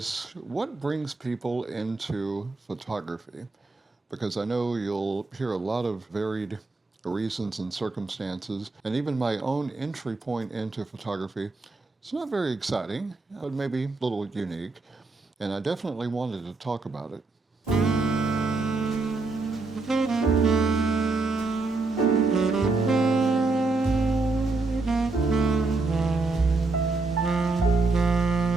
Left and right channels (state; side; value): quieter; left; 3.6 dB